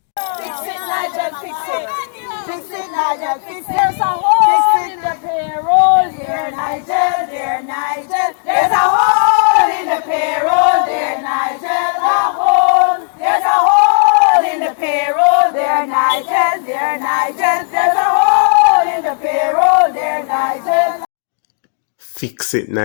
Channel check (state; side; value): silent; right; digital silence